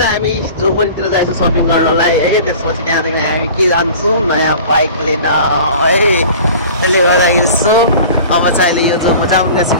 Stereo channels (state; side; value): inverted; both; correlation -0.42